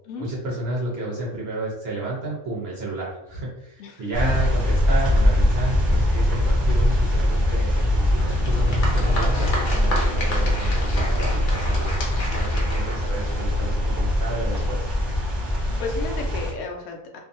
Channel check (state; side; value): normal; both; correlation 0.75